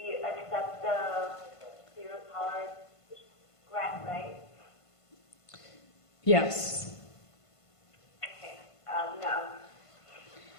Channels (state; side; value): late; right; 1.5 ms